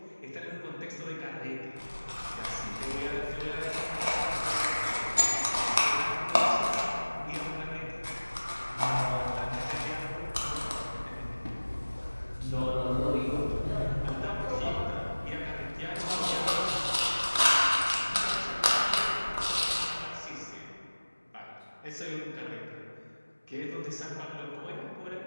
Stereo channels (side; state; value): both; inverted; correlation -1.00